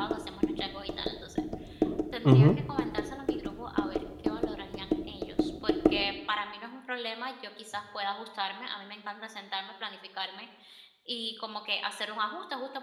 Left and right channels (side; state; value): both; identical; correlation 1.00